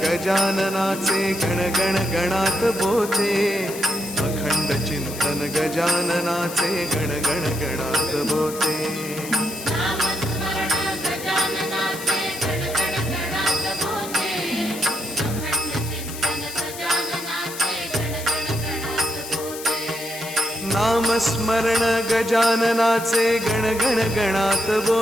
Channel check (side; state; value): left; noise; hiss, 11 dB below the sound